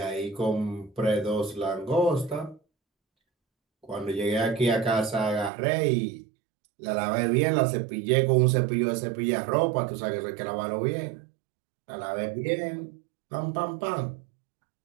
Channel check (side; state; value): left; drops out; at 5.5 s